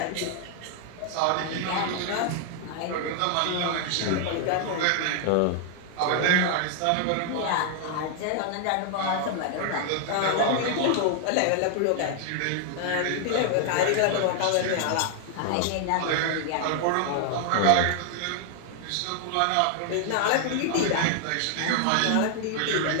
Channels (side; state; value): both; different; correlation 0.00